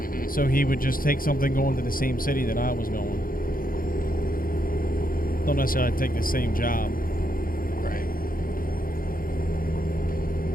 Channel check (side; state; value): right; late; 0.41 ms